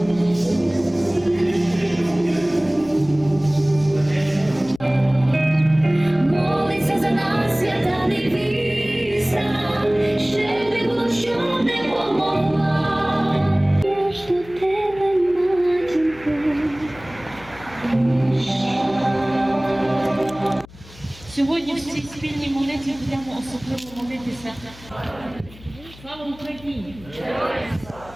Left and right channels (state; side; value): noise; left; hum, 21 dB below the sound